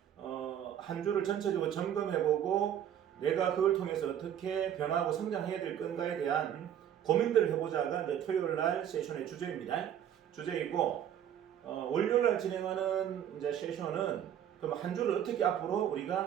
한 주를 전체적으로 점검해보고 내가 그걸 통해서 어떻게 변화하고 성장해야 될 건가에 대한 고민들을 해보자가 이제 토요일 날 세션의 주제입니다. 주제이고, 월요일날 진행하는 이제 세션은 그럼 한 주를 어떻게 앞으로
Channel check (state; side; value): quieter; left; 10.0 dB